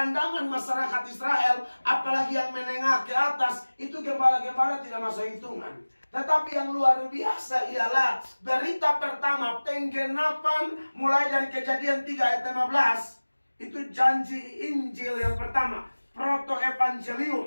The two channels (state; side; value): inverted; both; correlation -1.00